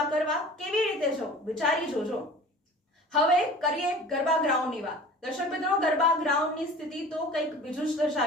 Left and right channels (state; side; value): normal; both; correlation 0.42